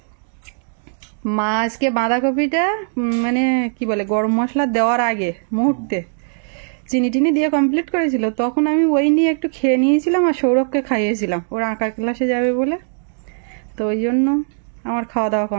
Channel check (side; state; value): left; silent; 60 dB below the other